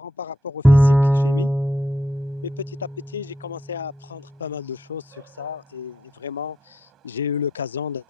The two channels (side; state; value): both; normal; correlation 0.81